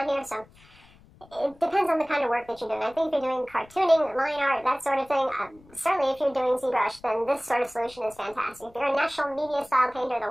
here, so it depends on the kind of work that you're doing. I think if you're doing cartooning, line art, that sort of thing, certainly if you're doing ZBrush, then this sort of solution is fantastic. If you're a national media style painter, the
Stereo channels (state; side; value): noise; left; rumble, 26 dB below the sound